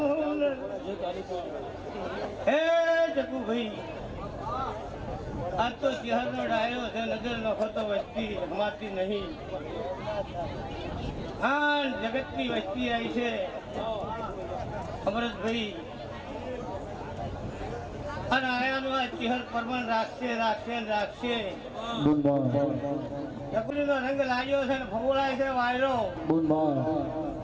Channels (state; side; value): identical; both; correlation 1.00